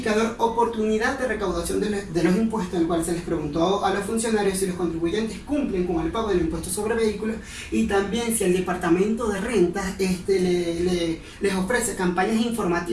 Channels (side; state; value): both; identical; correlation 1.00